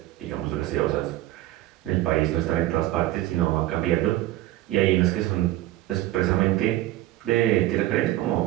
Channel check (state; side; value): quieter; left; 15.6 dB